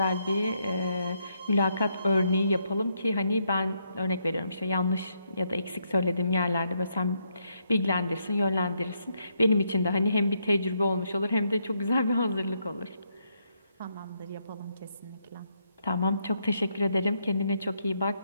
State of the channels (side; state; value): both; inverted; correlation -0.77